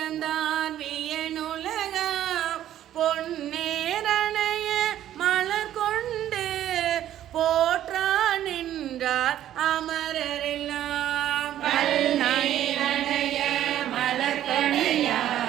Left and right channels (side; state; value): left; quieter; 11.9 dB